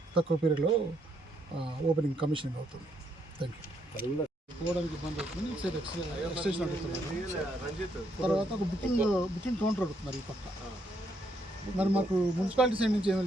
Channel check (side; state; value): both; normal; correlation 0.74